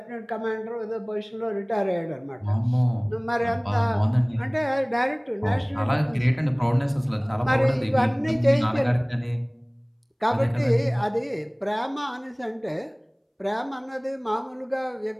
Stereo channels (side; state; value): both; identical; correlation 1.00